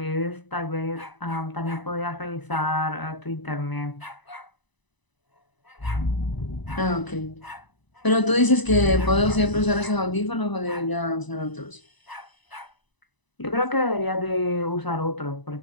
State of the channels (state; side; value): late; right; 1.0 ms